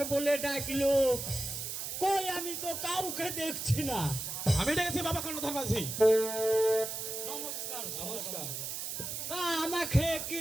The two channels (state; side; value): noise; right; hiss, 5 dB below the sound